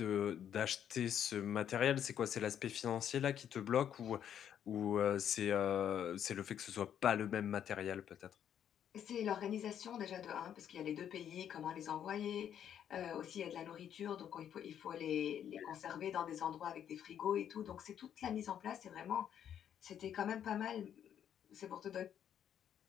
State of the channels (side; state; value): right; quieter; 9.5 dB